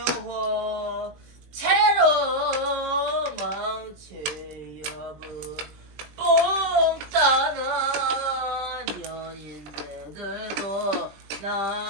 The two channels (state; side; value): late; left; 20 ms